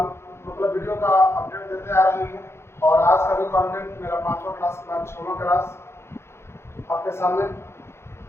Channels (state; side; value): late; right; 0.12 ms